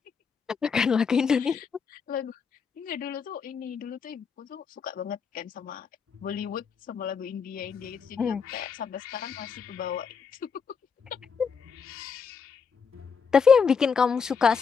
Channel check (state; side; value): quieter; right; 5.9 dB